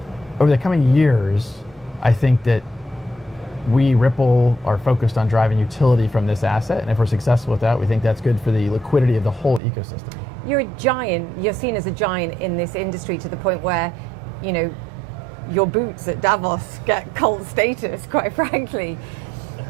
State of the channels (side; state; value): left; drops out; at 9.6 s